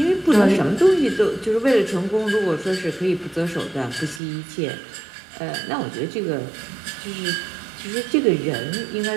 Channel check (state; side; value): drops out; left; at 4.2 s